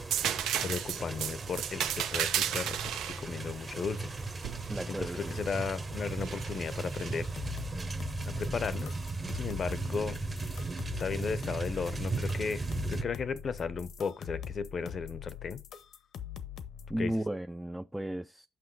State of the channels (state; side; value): normal; both; correlation 0.74